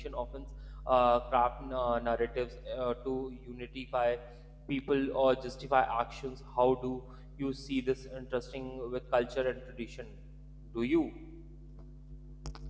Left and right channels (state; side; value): identical; both; correlation 1.00